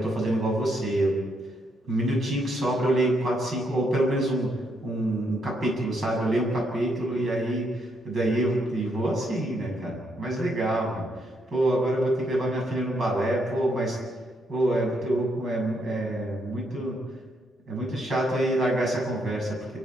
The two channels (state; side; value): normal; both; correlation 0.76